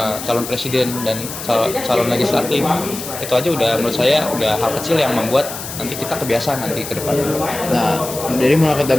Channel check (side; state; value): left; noise; hiss, 9 dB below the sound